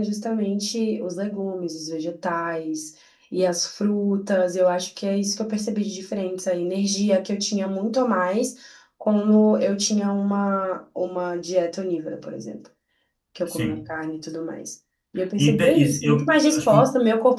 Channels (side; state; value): both; identical; correlation 1.00